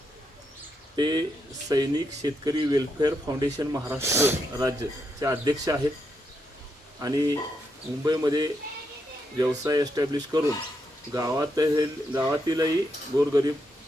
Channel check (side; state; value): both; normal; correlation 0.81